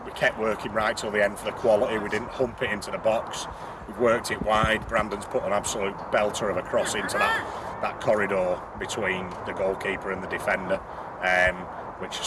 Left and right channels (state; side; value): identical; both; correlation 1.00